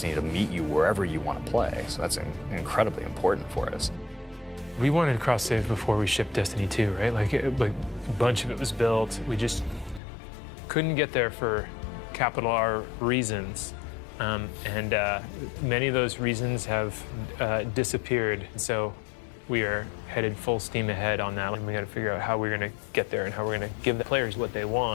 to meet you wherever you want to play, so that's incredibly important for us. We wanted cross-save before we shipped Destiny 2, right? Like a bunch of it was built. We just couldn't get there for capital R reasons. And many of those reasons have disappeared. So we are headed full steam ahead on that. And we got to figure out how we're going to get there and how we're going to give the players what they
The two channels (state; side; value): drops out; right; at 10.0 s